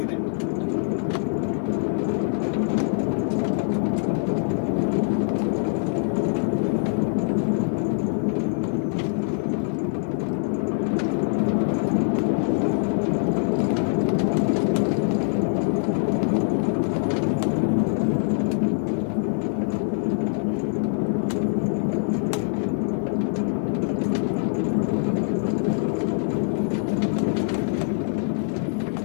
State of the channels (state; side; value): silent; right; 57 dB below the other